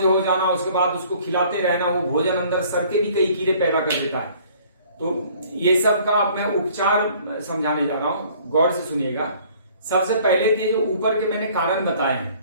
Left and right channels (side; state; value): both; inverted; correlation -0.55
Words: हो जाना, उसके बाद उसको खिलाते रहना, वो भोजन अंदर सर के भी कई कीड़े पैदा कर देता है। तो ये सब का मैं उपचार समझाने जा रहा हूं, गौर से सुनिएगा। सबसे पहले तो जो ऊपर के मैंने कारण बताए